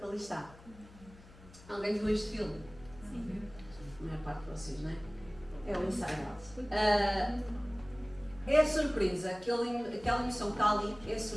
ali está? Alguém viu este filme? Sim. A maior parte de vocês, não é? É o Inside Out. É a surpresa. Aquela emoção que está ali é a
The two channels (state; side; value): noise; left; hum, 21 dB below the sound